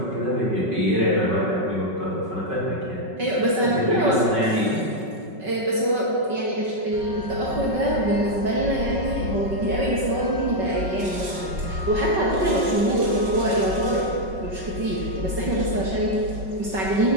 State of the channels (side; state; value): left; late; 5.3 ms